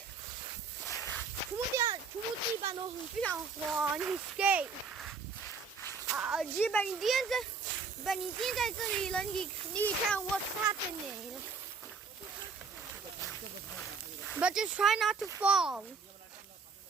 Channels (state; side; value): quieter; left; 5.0 dB